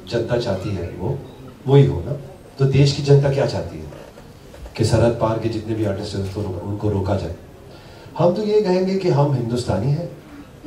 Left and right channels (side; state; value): both; identical; correlation 1.00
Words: जनता चाहती है वो वही हो ना। तो देश की जनता क्या चाहती है कि सरहद पार के जितने भी आर्टिस्ट हैं उनको रोका जाए। हम तो ये कहेंगे कि हम हिंदुस्तानी हैं,